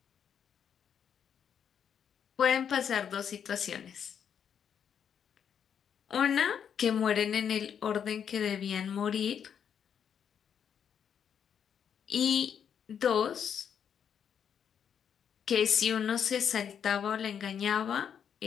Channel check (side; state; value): right; quieter; 8.0 dB